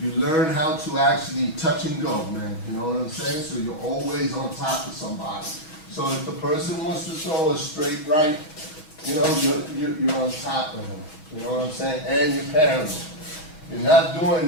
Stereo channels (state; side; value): late; right; 6.3 ms